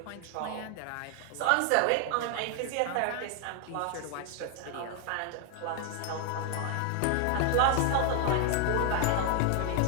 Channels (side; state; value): both; different; correlation 0.00